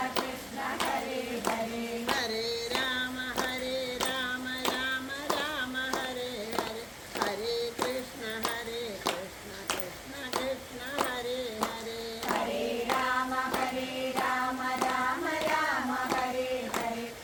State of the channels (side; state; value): both; identical; correlation 1.00